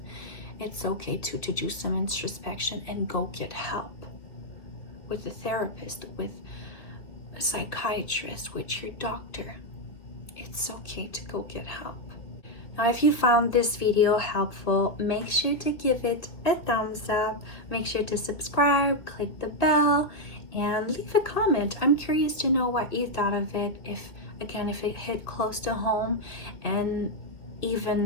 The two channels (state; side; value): late; right; 2.7 ms